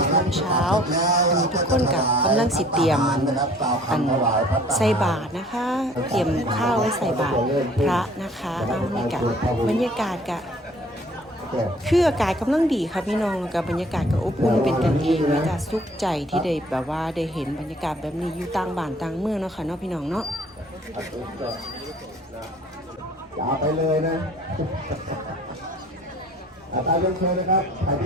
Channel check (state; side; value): normal; both; correlation 0.54